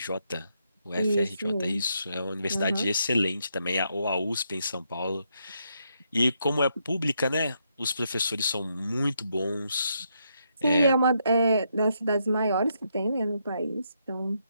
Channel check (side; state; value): both; inverted; correlation -0.78